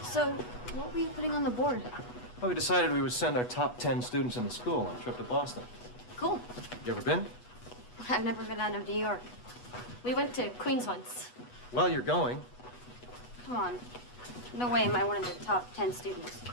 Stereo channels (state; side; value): late; right; 8.2 ms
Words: So, what were you putting on the board? Well, we decided we would send our top 10 students in the school on a trip to Boston. Cool. You ever been? I've never been out of New York. We went to Queens once. Well, you're going. Come on. No way am I one of the top 10 students.